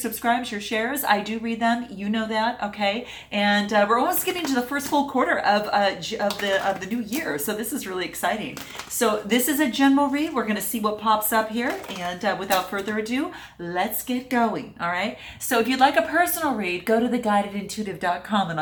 your shares. I do read them. You know that. Okay. And we're almost getting to the first full quarter of the new year, so this is really exciting. So this is a general read. We're going to see what pops up here, and without further ado, let's get going. All right. So if you'd like a personal read, go to theguidedintuitive.com and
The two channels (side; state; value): both; identical; correlation 1.00